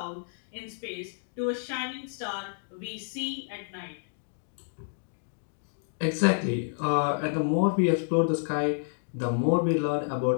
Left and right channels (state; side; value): silent; right; digital silence